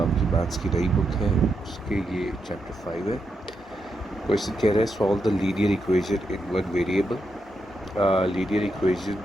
मैथ्स की नई बुक है उसके ये चैप्टर 5 है। क्वेश्चन कह रहा है solve the linear equation in one variable. Linear equation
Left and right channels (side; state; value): both; normal; correlation 0.83